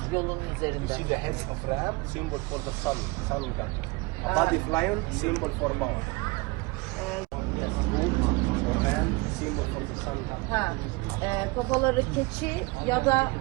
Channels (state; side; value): quieter; left; 24.7 dB